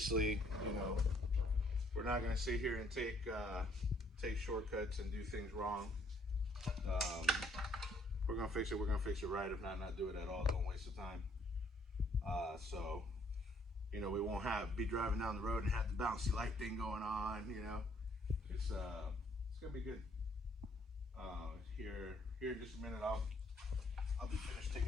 we're not going to sit here and take shortcuts and do things wrong. We're gonna fix it. We're gonna fix it right. If not do it at all. Don't waste the time. So, we won't be driving down the road and have the bouncy light thing going on. It's gonna be good. Here in just a minute, I'll be finished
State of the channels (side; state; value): both; normal; correlation 0.65